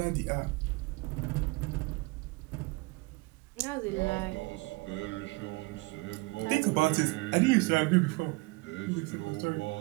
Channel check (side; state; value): left; quieter; 25.4 dB